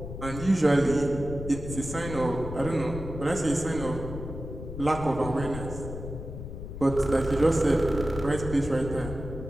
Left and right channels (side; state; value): left; noise; rumble, 9 dB below the sound